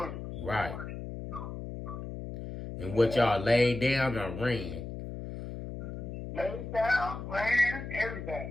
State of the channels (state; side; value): noise; left; hum, 8 dB below the sound